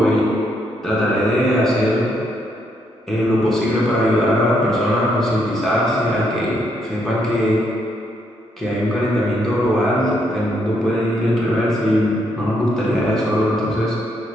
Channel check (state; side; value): normal; both; correlation 0.75